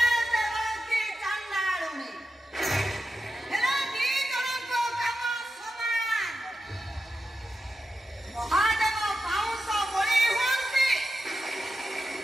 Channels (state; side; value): normal; both; correlation 0.90